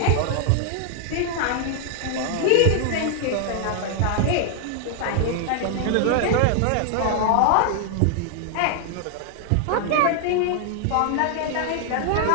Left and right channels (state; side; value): different; both; correlation 0.00